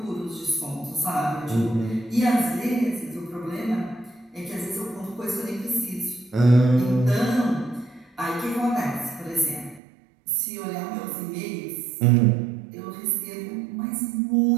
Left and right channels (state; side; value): drops out; left; at 9.8 s